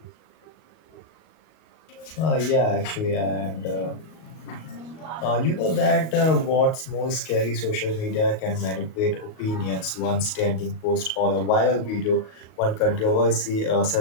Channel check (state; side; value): late; right; 38 ms